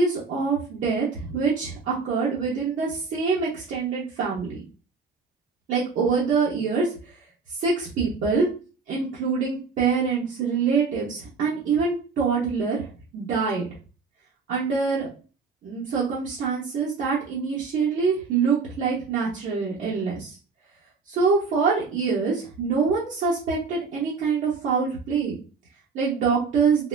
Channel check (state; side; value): quieter; left; 4.8 dB